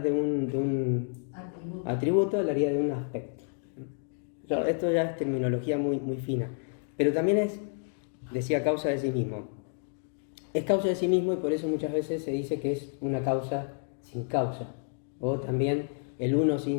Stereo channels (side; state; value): right; silent; 57 dB below the other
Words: de un atributo, hablaría de un aspecto. Esto ya es terminología muy, muy fina, pero también decía causa de sí mismo. Es causa de sí mismo y por eso muchas veces se dice que es una causa sin causa, o también el uno